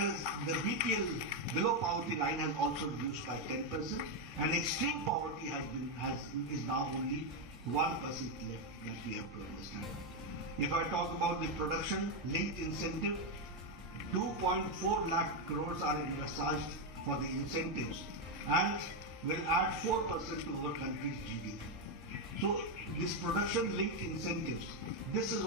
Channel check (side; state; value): both; normal; correlation 0.04